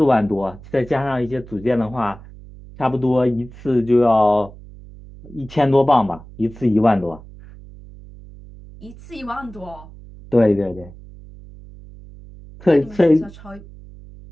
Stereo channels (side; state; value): right; noise; hum, 19 dB below the sound